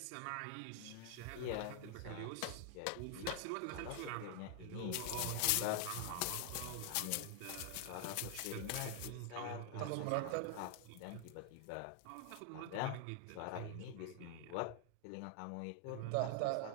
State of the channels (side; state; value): both; different; correlation 0.00